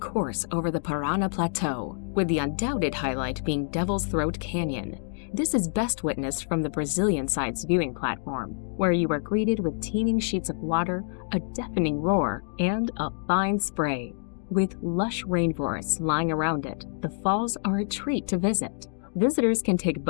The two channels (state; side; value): silent; right; digital silence